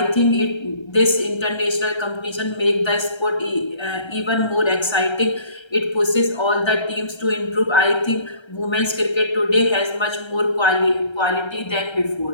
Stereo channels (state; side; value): late; right; 1.3 ms